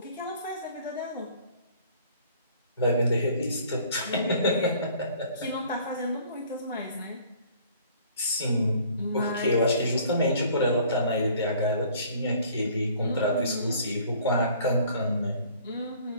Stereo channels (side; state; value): both; inverted; correlation -0.54